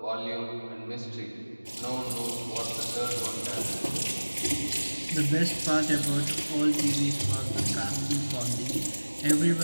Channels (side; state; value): both; inverted; correlation -1.00